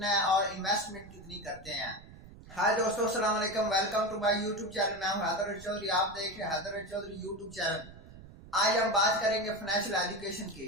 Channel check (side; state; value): right; noise; rumble, 18 dB below the sound